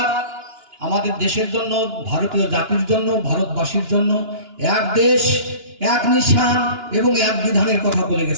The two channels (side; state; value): left; late; 2.9 ms